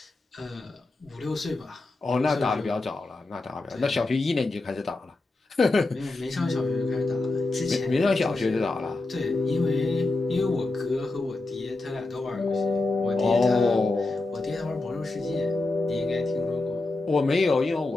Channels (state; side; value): quieter; right; 3.2 dB